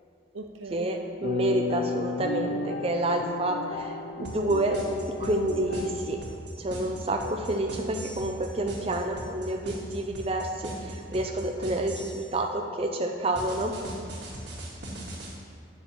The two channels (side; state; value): both; normal; correlation 0.31